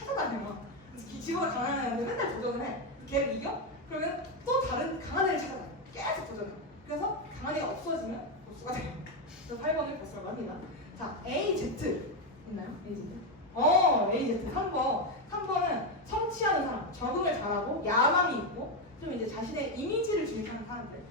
지보다 강한 애한테 맨날 도전을 해. 걔를 이겨? 그러면 또 다른 강한 애를 찾아다녀. 계속 도전해. 그래서 강한 애가 없어지면 보스가 돼요. 그래서 8번을 보스라고 합니다. 자, AZ 있나요? AZ? AZ 3번은 성취하는 사람, 적응을 잘하고 야망이 있고 좀 이제 자신의 이미지를 주입하는 사람들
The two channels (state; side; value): normal; both; correlation 0.07